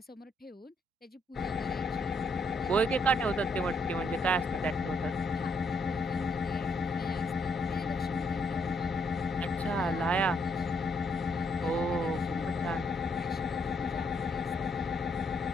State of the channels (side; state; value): both; normal; correlation 0.73